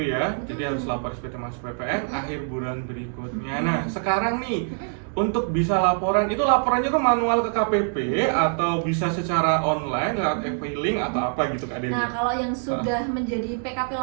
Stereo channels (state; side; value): silent; left; 62 dB below the other